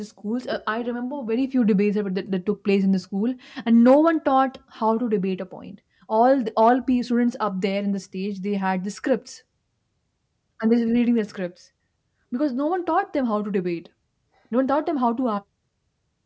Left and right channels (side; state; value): both; identical; correlation 1.00